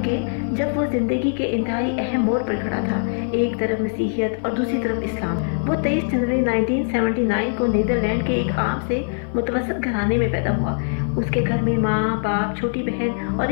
के, जब वो ज़िंदगी के इंतहाई अहम मोड़ पर खड़ा था। एक तरफ मसीहियत और दूसरी तरफ इस्लाम। वो 23 जनवरी 1979 को नीदरलैंड के एक आम से मुतवसत घराने में पैदा हुआ। उसके घर में माँ, बाप, छोटी बहन और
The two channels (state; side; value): silent; right; 58 dB below the other